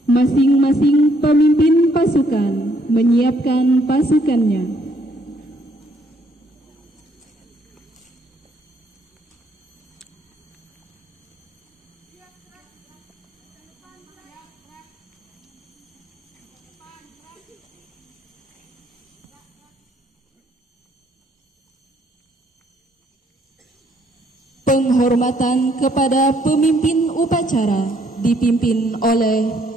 Masing-masing pemimpin pasukan menyiapkan pasukannya. Penghormatan kepada pemimpin upacara dipimpin oleh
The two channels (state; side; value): normal; both; correlation 0.68